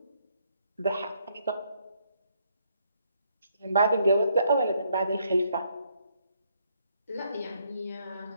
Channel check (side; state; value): both; inverted; correlation -0.72